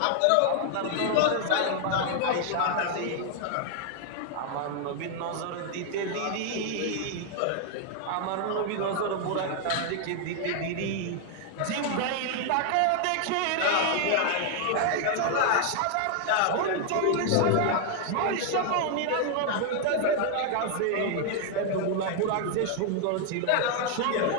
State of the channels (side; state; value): both; different; correlation 0.00